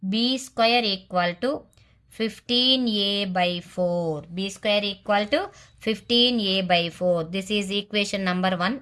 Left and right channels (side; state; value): both; identical; correlation 1.00